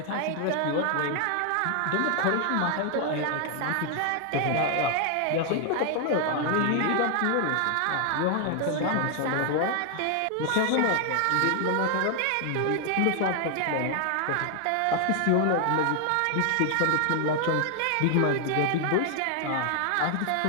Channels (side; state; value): both; different; correlation 0.00